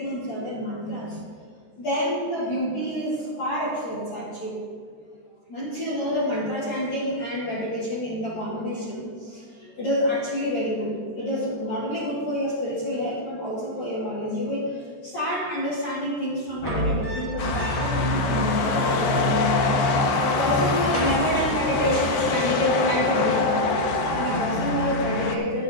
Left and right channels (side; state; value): right; late; 13 ms